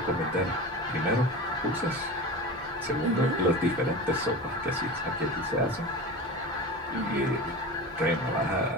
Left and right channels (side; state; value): both; normal; correlation 0.30